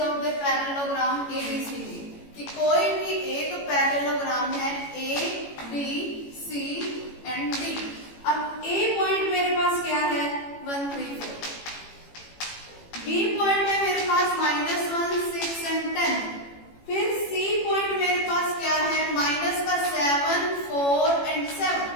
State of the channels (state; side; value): late; right; 18 ms